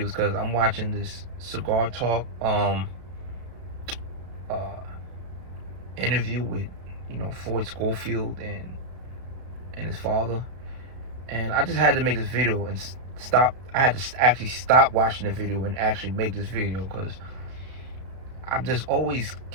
is because I'm watching this Cigar Talk uh interview with Floyd Schofield and his father, and I just had to make this video and stop. I had to actually stop watching the video and actually make this video because I'm just always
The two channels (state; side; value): late; left; 32 ms